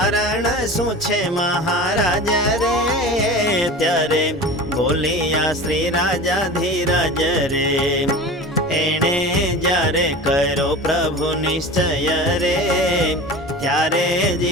શું છે મહારાજ રે? ત્યારે બોલ્યા શ્રી રાજા ધીરજ રે. એણે જ્યારે કર્યો પ્રભુ નિશ્ચય રે, ત્યારે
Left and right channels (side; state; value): both; normal; correlation 0.34